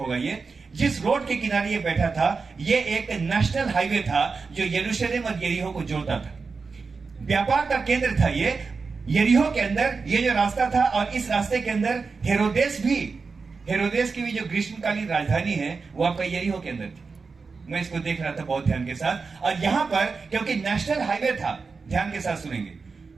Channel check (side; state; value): left; quieter; 4.7 dB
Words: ये। जिस रोड के किनारे ये बैठा था, ये एक नेशनल हाईवे था जो यरूशलेम और यरीहो को जोड़ता था। व्यापार का केंद्र था ये यरीहो के अंदर, ये जो रास्ता था। और इस रास्ते के अंदर हेरोदेस की भी जो ग्रीष्मकालीन राजधानी है, वो आपका यरीहो के अंदर थी। मैं इसको देख रहा था बहुत ध्यान के साथ। और यहां पर क्योंकि नेशनल हाईवे था, ध्यान के साथ सुनेंगे,